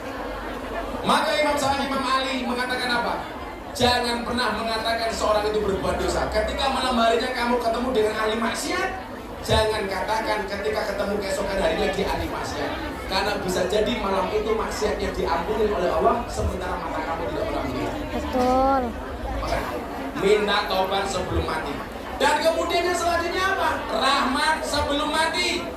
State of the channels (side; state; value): both; identical; correlation 1.00